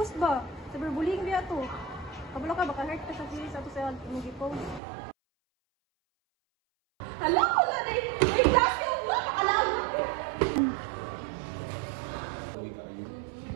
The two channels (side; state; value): left; drops out; at 4.8 s